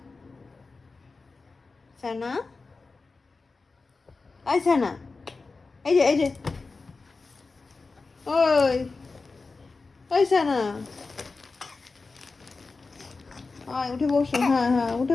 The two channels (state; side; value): quieter; right; 4.0 dB